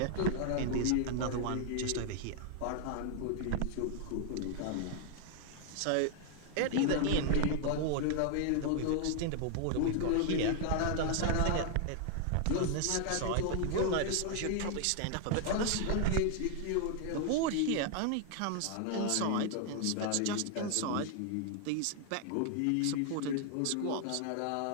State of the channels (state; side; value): different; both; correlation 0.00